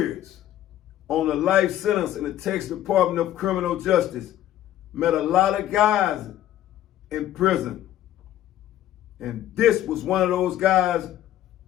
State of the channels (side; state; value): right; quieter; 12.6 dB